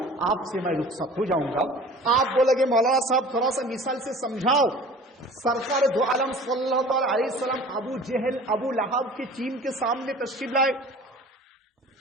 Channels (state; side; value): normal; both; correlation 0.43